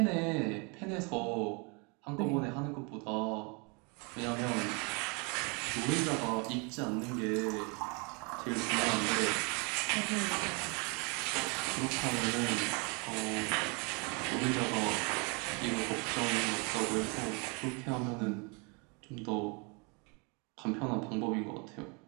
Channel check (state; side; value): quieter; left; 32.3 dB